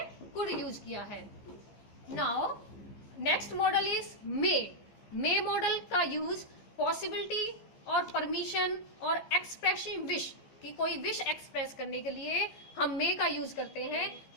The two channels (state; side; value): late; right; 15 ms